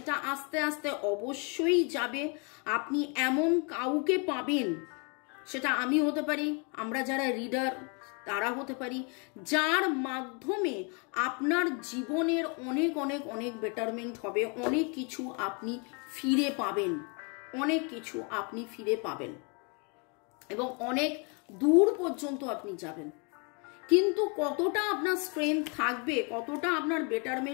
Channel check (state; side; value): quieter; right; 34.6 dB